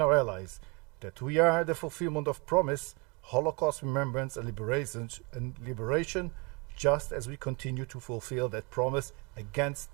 our allies that we are the fulfillment of promise, Holocaust remembrance and liberation, just as we continue to fulfill that promise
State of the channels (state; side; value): quieter; left; 29.6 dB